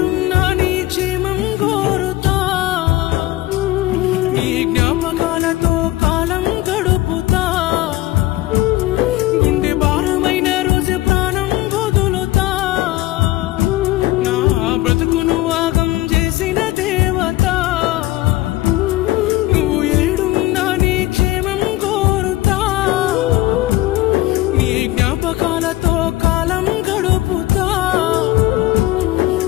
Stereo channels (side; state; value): right; quieter; 16.9 dB